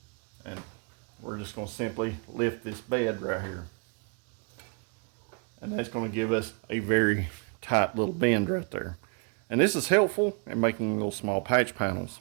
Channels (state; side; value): quieter; left; 36.4 dB